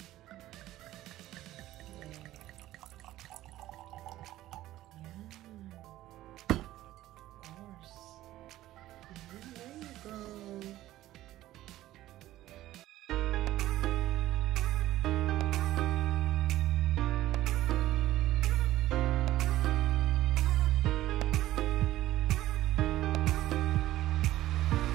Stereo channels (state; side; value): quieter; left; 15.0 dB